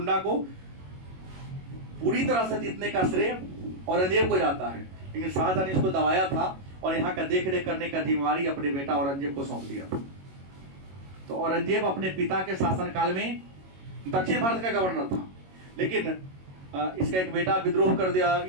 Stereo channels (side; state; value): left; late; 22 ms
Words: को पूरी तरह से जीतने का श्रेय औरंगजेब को जाता है, लेकिन शाहजहां ने इसको दबाया था और यहाँ का देख रेख करने का जिम्मेवारी अपने बेटा औरंगजेब को सौंप दिया था। तो औरंगजेब अपने पिता के शासनकाल में दक्षिण भारत का गवर्नर था, लेकिन इसका एक बेटा विद्रोह कर दिया,